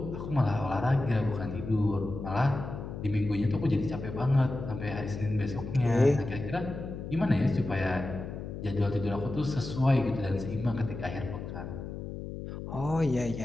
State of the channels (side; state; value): left; noise; hum, 8 dB below the sound